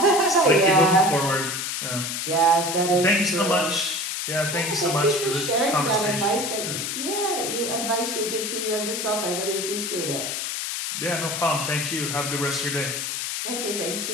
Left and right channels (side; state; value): left; noise; hiss, 3 dB below the sound